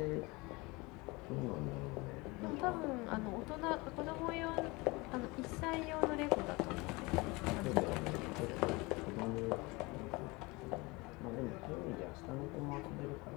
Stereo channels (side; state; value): right; quieter; 24.7 dB